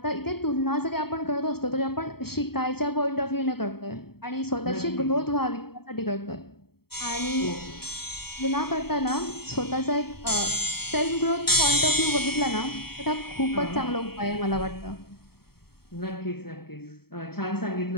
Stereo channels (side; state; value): right; late; 0.95 ms